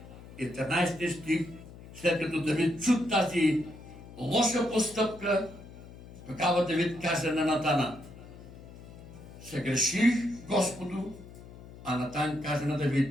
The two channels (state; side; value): noise; left; hum, 17 dB below the sound